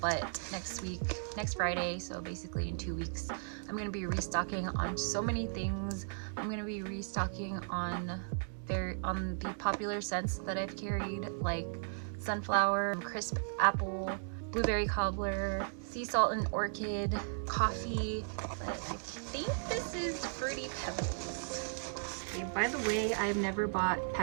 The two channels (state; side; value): silent; left; digital silence